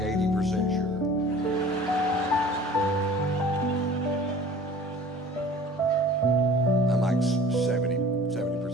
sure. I'm like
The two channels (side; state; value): both; normal; correlation 0.46